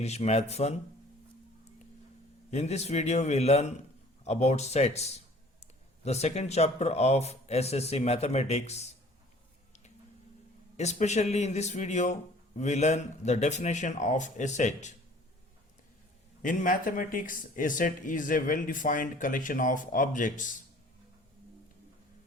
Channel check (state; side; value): normal; both; correlation 0.51